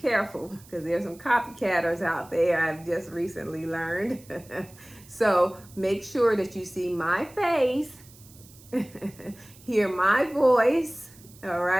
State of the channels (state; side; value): noise; right; hiss, 23 dB below the sound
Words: because there's some copycatters out there, I've just recently learned. So make sure that you see my face, hear my voice, all